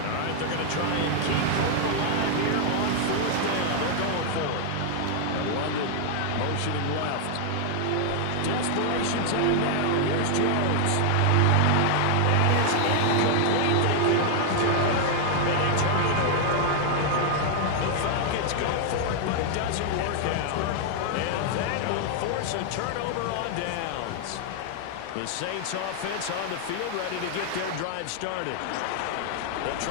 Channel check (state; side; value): different; both; correlation 0.00